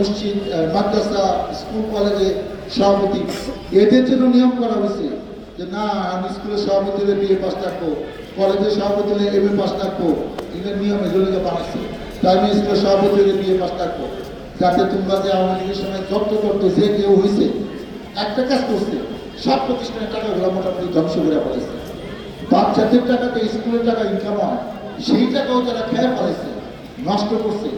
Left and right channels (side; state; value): both; identical; correlation 1.00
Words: মাদ্রাসা স্কুল কলেজে সভাপতি। এদের জন্য নিয়ম করা হয়েছে যে না আমি স্কুলের সভাপতি হলে BA পাস থাকবো, কলেজের সভাপতি হলে MA পাস থাকবো। এদের নিয়ম এগুলোকে বানাচ্ছে। প্রাইমারি স্কুলের সভাপতি হলে BA পাস থাকবো, যাতে তোমরা যে আওয়ামী লীগের সময় জব্দ করতো যে কেউ হয়েছে একটা কাজ করছে, সব প্রতিষ্ঠানের টাকাগুলো মোটামুটি ধ্বংস করে ফেলেছে। বাচ্চাদের টাকাতে স্কুলের টাকা ইনকাম হয়, সেই টাকাও তারা খেয়ে ফেলেছে, নষ্ট করছে।